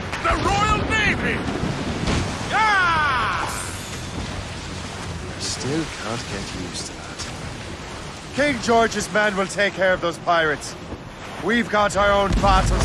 The Royal Navy! Ah! Still can't get used to that. King George's men will take care of those pirates. We've got our own battles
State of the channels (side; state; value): both; identical; correlation 1.00